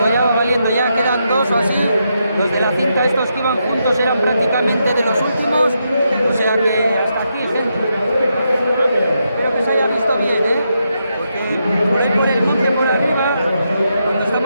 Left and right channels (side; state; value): both; inverted; correlation -0.82